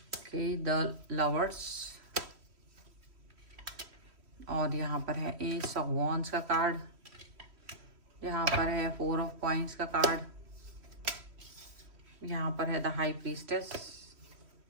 द लवर्स, और यहाँ पर है एस ऑफ वॉन्ड्स का कार्ड। यहाँ पर है 4 ऑफ कॉइंस का कार्ड। यहाँ पर है द हाई प्रीस्टेस।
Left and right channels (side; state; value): left; late; 3.1 ms